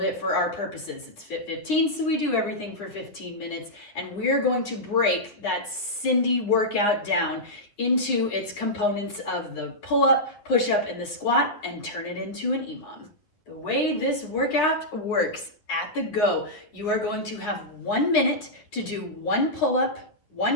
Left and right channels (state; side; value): late; right; 9.9 ms